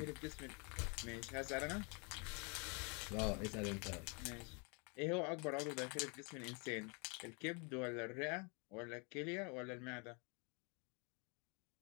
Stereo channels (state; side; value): quieter; right; 33.6 dB